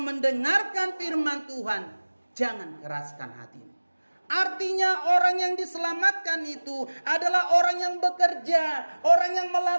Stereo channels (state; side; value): inverted; both; correlation -1.00